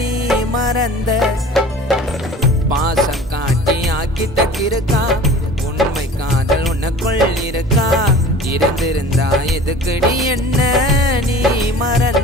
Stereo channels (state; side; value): normal; both; correlation 0.42